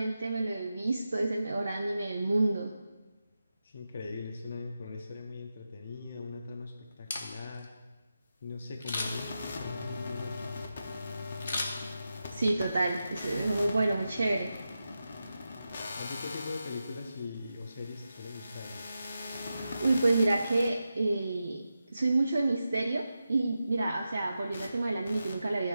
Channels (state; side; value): inverted; both; correlation -0.90